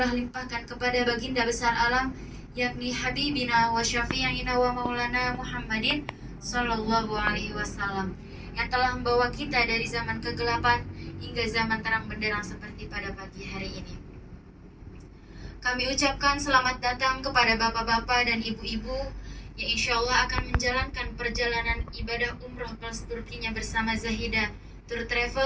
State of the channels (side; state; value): both; identical; correlation 1.00